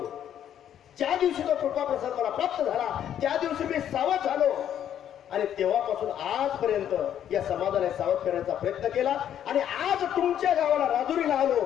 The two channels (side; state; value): right; quieter; 10.1 dB